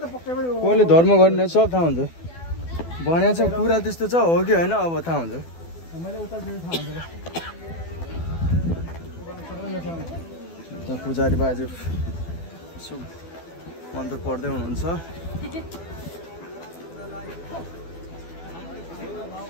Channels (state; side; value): late; right; 12 ms